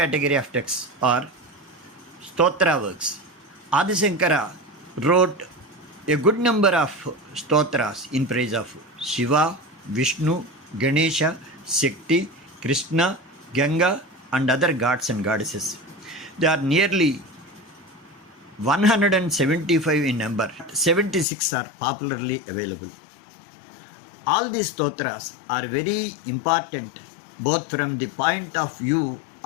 of texts are Stotra works. Adi Shankara wrote a good number of stotras in praise of Shiva, Vishnu, Ganesha, Shakti, Krishna, Ganga and other gods and goddesses. They are nearly 175 in number. 76 are popularly available. All these stotras are very important both from the point of view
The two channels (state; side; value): drops out; right; at 21.2 s